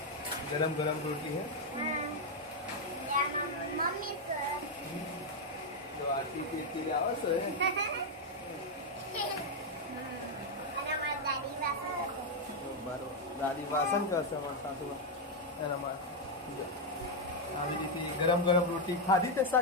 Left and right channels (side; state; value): both; normal; correlation 0.01